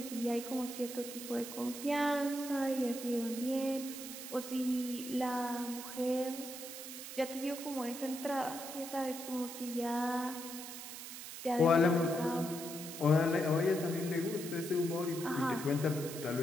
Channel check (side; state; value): right; noise; hiss, 10 dB below the sound